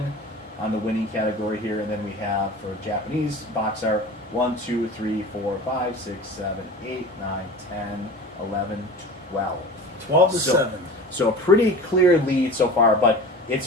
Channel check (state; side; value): normal; both; correlation 0.36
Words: on the winning category here, and then we have for Japanese box art 1, 2, 3, 4, 5, 6, 7, 8, 9, 10, 11, 12. 12 to 7. So a pretty clear lead so far, but